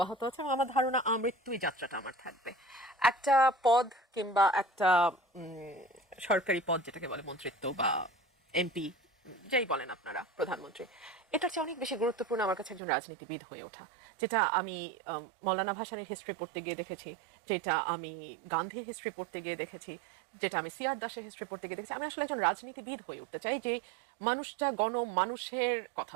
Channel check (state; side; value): drops out; left; at 12.8 s